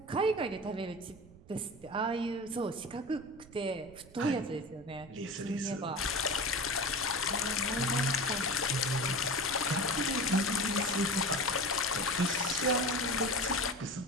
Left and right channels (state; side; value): noise; right; rumble, 21 dB below the sound